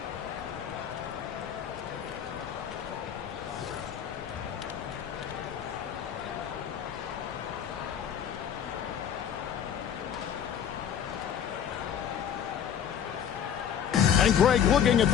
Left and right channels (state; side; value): quieter; right; 8.8 dB